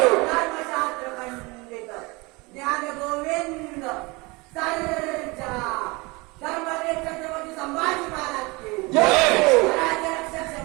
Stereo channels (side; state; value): left; quieter; 25.3 dB